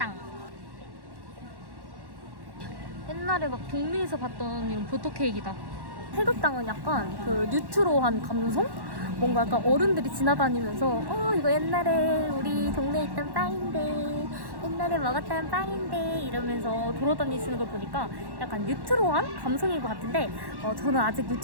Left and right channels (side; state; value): left; late; 1.1 ms